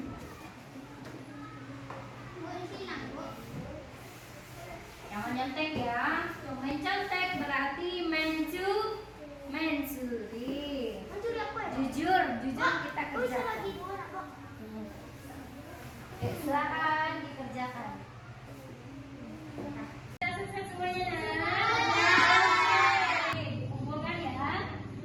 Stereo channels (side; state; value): both; identical; correlation 1.00